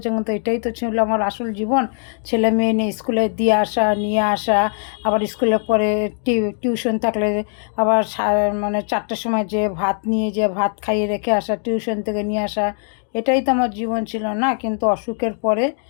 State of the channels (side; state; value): right; silent; 65 dB below the other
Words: কিন্তু এটাই তো ছিল আমার আসল জীবন। ছেলে মেয়ে নিয়ে স্কুলে দিয়ে আসা, নিয়ে আসা, আবার স্কুলে পরে টিউশন থাকলে আবার মানে 4টার সময় যে ভাত নিয়ে যে ভাত খাইয়ে রেখে আসা, টিউশন থেকে নিয়ে আসা, এটাই তো আমার জীবন ছিল না। কিন্তু অসুখের পরে